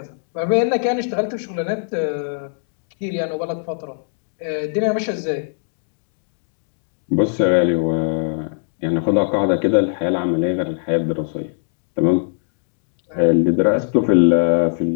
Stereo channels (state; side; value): silent; right; digital silence